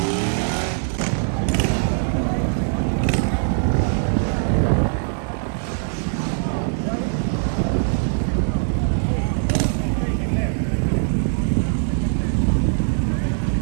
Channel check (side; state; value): left; silent; 55 dB below the other